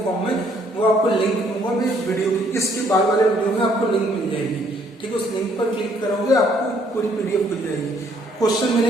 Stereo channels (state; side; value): normal; both; correlation 0.66